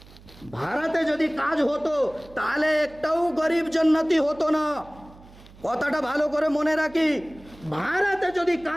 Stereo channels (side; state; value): right; noise; hum, 22 dB below the sound